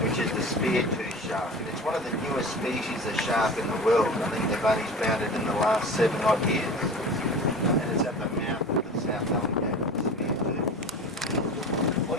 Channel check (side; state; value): both; normal; correlation 0.35